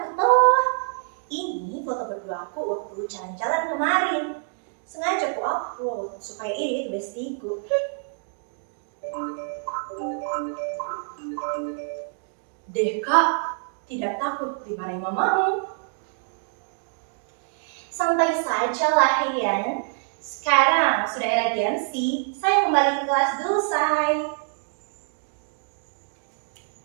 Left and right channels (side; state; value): left; silent; 61 dB below the other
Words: toh. Ini foto berdua aku waktu jalan-jalan kemarin. Sengaja aku upload supaya ini bestiku. Deh kak, tidak takut dimarahin mamamu? Santai saja lah Yan. Sekarang sudah era Gen Z, saya kembali ke kelas dulu say.